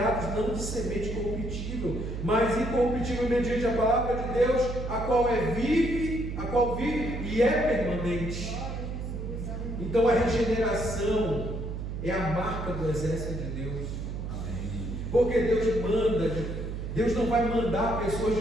não de semente corruptível, mas incorruptível mediante a palavra de Deus, a qual vive e é permanente. Então a regeneração é a marca do exército de Deus. Porque Deus manda, Deus não vai mandar pessoas de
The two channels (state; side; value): noise; right; hum, 5 dB below the sound